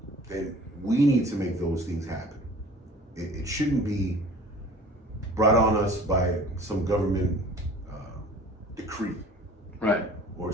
then we need to make those things happen. It shouldn't be brought on us by some government decree, right, or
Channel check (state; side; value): normal; both; correlation 0.46